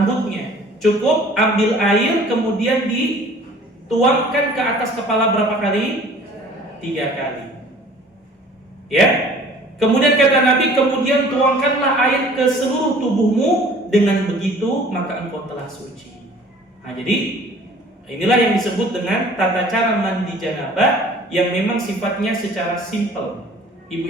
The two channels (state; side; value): normal; both; correlation 0.50